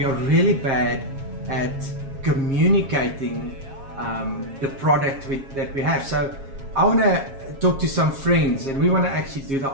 are really bad at communicating the product that we have. So I want to talk to some friends, and we want to actually do the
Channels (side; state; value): left; late; 7.4 ms